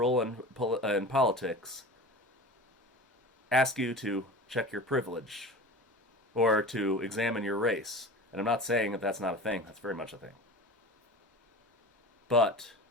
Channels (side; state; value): both; normal; correlation 0.35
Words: in politics, ask you to check your privilege or to examine your race. And I'm not saying that that's not a thing. That's very much a thing. But